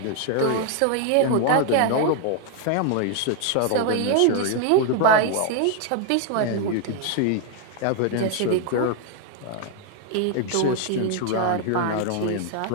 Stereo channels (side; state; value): both; different; correlation 0.00